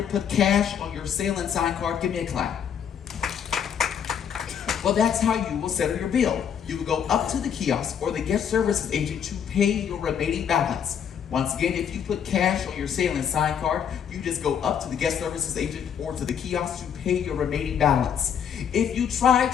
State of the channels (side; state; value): right; quieter; 8.2 dB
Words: put cash on your sail and sign card? Give me a clap. Well, that's how you will settle your bill. You will go up to the kiosk or the guest services agent to pay your remaining balance. Once again, if you put cash on your sail and sign card, you just go up to the guest services agent or to the kiosk to pay your remaining balance. If you try